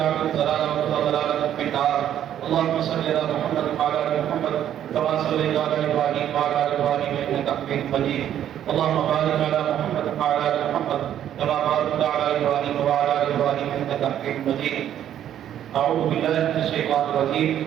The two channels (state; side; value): quieter; left; 10.7 dB